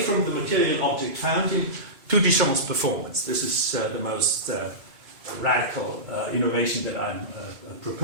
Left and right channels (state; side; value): late; left; 2.2 ms